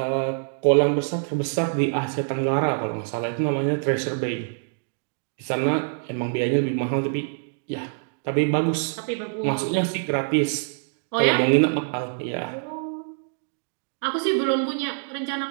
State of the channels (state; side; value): silent; left; digital silence